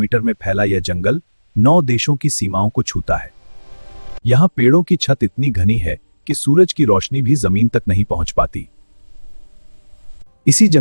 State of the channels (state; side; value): inverted; both; correlation -1.00